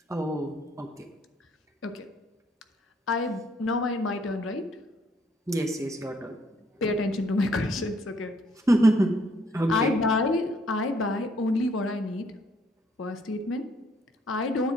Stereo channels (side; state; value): both; normal; correlation 0.67